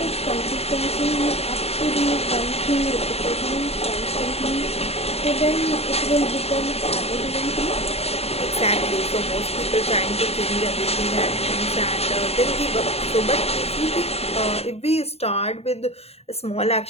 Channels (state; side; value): late; right; 0.30 ms